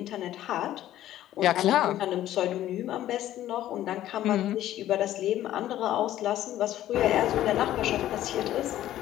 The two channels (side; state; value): right; quieter; 13.1 dB